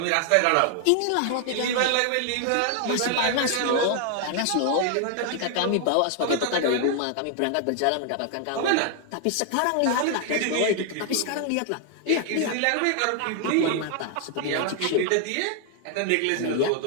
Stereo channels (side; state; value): both; different; correlation 0.00